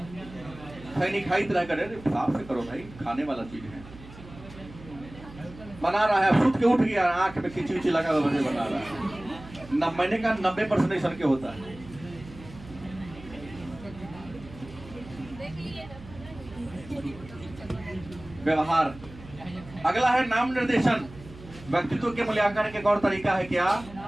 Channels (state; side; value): noise; right; hum, 17 dB below the sound